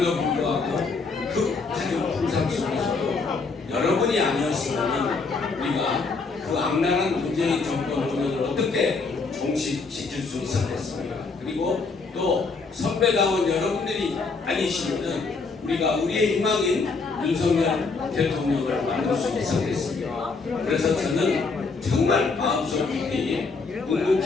불구하고 그 가정 풍상 속에서도 여러분이 아니었으면 우리가 그 악랄한 문재인 정권 운영을 어떻게 종식시킬 수 있었겠습니까? 그리고 또 선배당원 여러분들이 아니시면은 우리가 우리의 희망인 윤석열 대통령을 만들 수 있었겠습니까? 그래서 저는 정말 마음속 깊이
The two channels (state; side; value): quieter; right; 4.3 dB